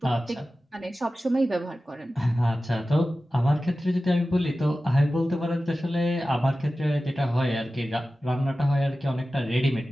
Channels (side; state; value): both; normal; correlation 0.95